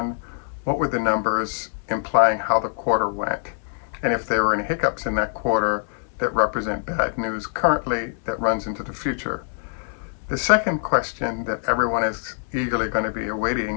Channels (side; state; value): right; silent; 63 dB below the other